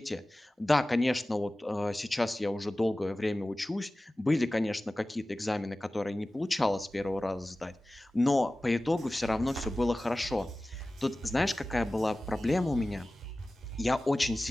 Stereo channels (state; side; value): normal; both; correlation 0.97